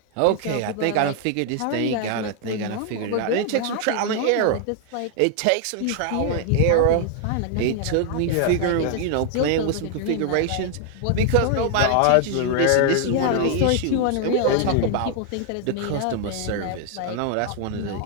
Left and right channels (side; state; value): both; different; correlation 0.00